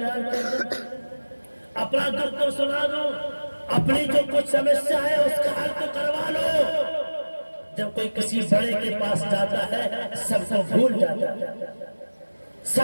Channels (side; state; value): both; inverted; correlation -1.00